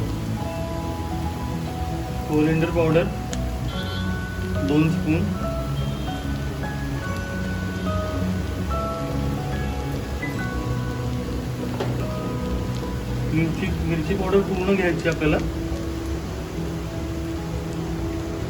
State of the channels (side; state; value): both; identical; correlation 1.00